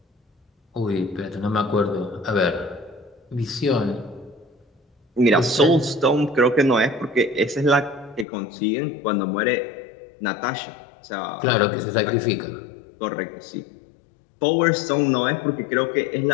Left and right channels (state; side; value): drops out; right; at 8.2 s